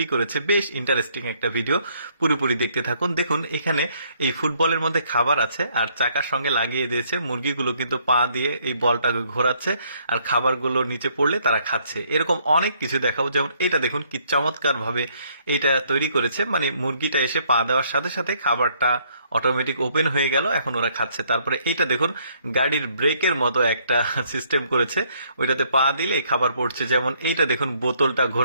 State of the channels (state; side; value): inverted; both; correlation -0.67